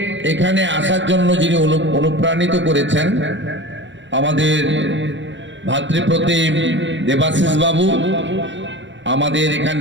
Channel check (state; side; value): late; left; 0.54 ms